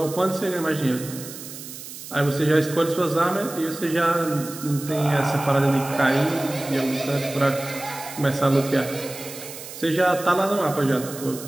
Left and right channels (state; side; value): noise; right; hiss, 12 dB below the sound